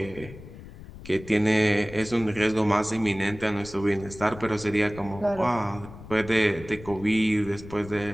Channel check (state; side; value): noise; left; rumble, 16 dB below the sound